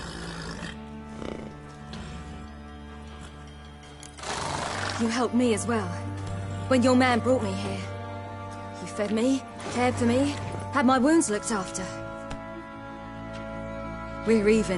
You helped me as well. When your man brought me here. You fed me, cared for me, had my wounds looked after. We're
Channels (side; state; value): both; identical; correlation 1.00